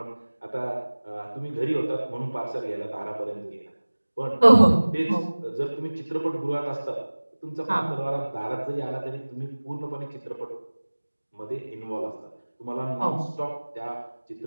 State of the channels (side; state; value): both; inverted; correlation -1.00